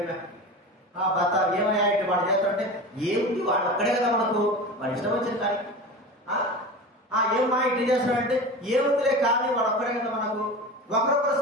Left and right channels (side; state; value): both; normal; correlation 0.31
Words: భర్త ఏమయ్యా ఇటు వాడు చేస్తాడంటే ఏముంది, వాడు ఒక్కడే కదా మనకు, వాడు ఇష్టం వచ్చింది కానీ ఏమా ఇటు చేస్తాడంటే ఏముందిలే కానీ వాడు ఒక్కడే కదా మనకు. ఒకరొకరు